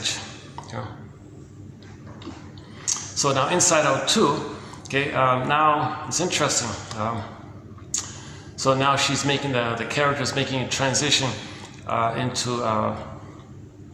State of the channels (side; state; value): both; identical; correlation 1.00